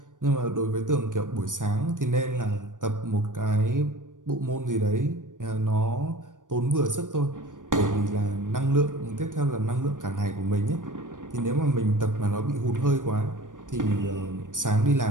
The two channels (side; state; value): left; late; 0.88 ms